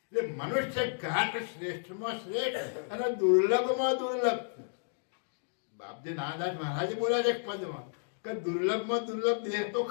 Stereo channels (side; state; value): right; silent; digital silence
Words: એટલે મનુષ્ય ઘાટ શ્રેષ્ઠમાં શ્રેષ્ઠ અને દુર્લભમાં દુર્લભ. બાપજી નાનદાસ મહારાજે બોલ્યા છે એક પદમાં કે દુર્લભમાં દુર્લભ દેહ તો